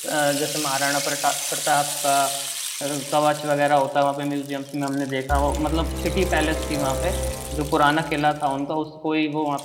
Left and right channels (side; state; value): both; identical; correlation 1.00